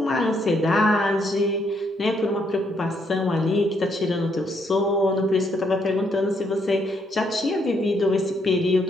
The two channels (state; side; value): normal; both; correlation 0.73